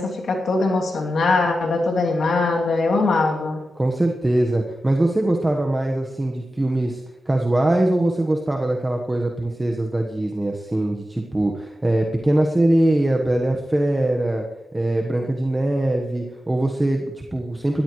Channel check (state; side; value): normal; both; correlation 0.93